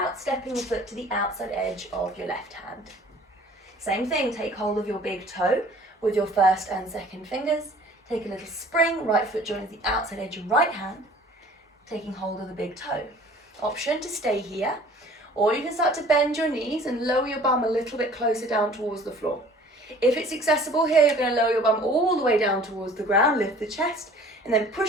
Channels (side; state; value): both; normal; correlation 0.50